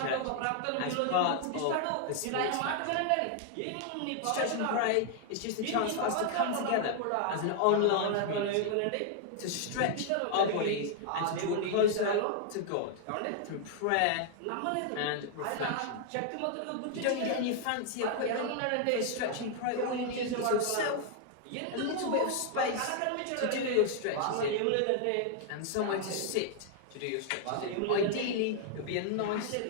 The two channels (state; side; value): different; both; correlation 0.00